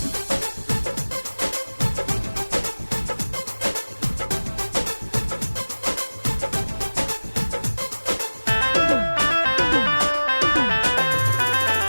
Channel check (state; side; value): inverted; both; correlation -1.00